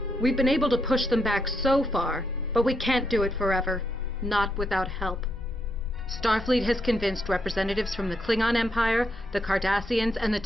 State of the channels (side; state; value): both; normal; correlation 0.78